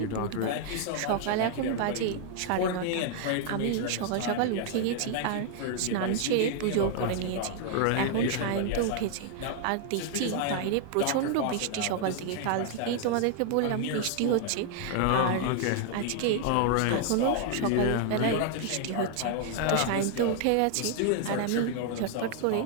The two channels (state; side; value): different; both; correlation 0.00